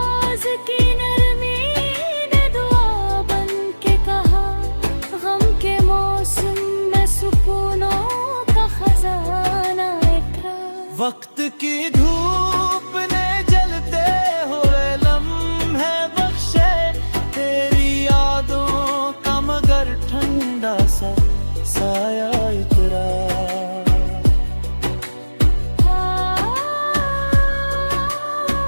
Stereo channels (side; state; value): both; inverted; correlation -1.00